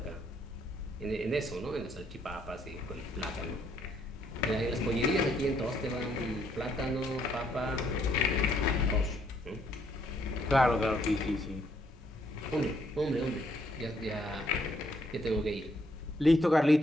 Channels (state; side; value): normal; both; correlation 0.69